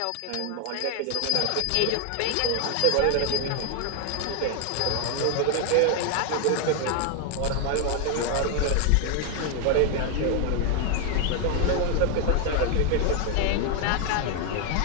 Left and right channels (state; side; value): different; both; correlation 0.00